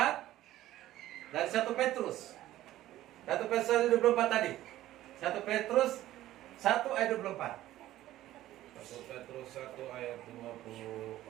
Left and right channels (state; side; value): quieter; left; 14.5 dB